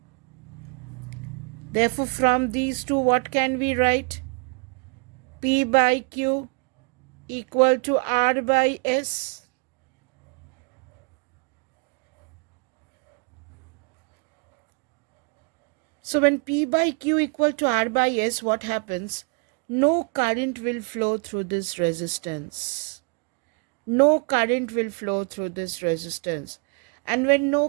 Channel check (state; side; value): quieter; left; 34.2 dB